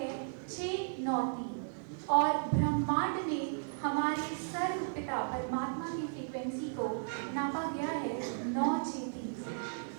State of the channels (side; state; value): left; silent; 54 dB below the other